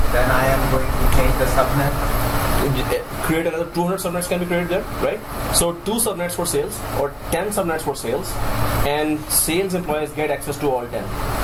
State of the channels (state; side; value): identical; both; correlation 1.00